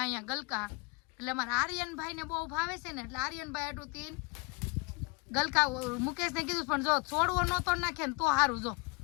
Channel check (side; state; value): right; quieter; 29.5 dB